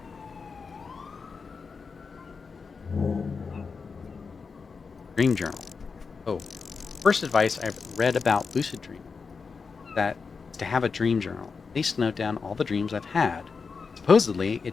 Dream journal. Oh, first advice I've read about lucid dreaming that is to have a dream journal, at least note down all the dreams I've had. Supposedly,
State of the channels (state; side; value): quieter; right; 5.1 dB